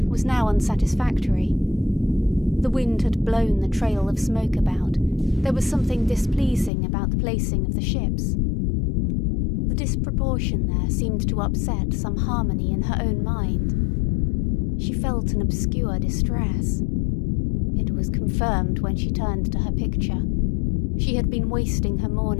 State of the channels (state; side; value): drops out; right; at 6.7 s